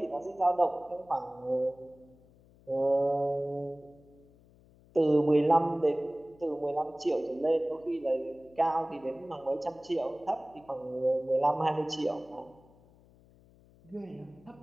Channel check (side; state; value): left; noise; hum, 27 dB below the sound